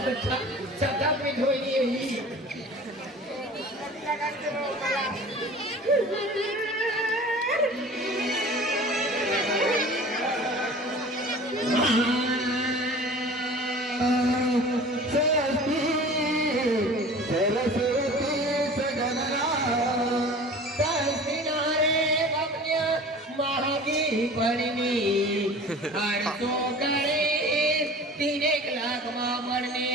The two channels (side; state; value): both; normal; correlation 0.42